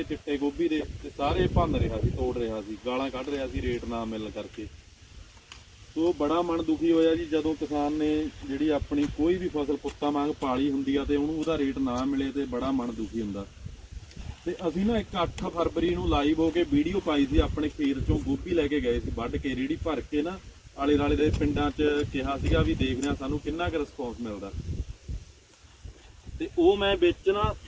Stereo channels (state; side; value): identical; both; correlation 1.00